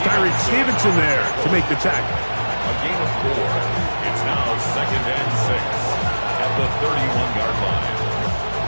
Tyreek Stevenson there to make the tackle. A gain of 4. It's now 2nd and 6 at the 31-yard line.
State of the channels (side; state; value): both; inverted; correlation -1.00